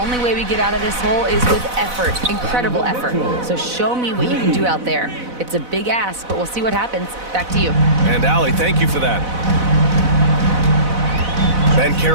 way we get out of this hole is with effort, incredible effort. So show me what you can do out there. It's a big ask, but we'll see what happens. Back to you. And Allie, thank you for that. Ben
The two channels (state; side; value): late; left; 4.0 ms